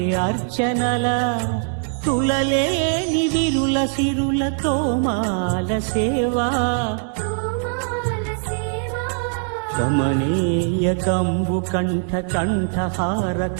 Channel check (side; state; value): left; silent; digital silence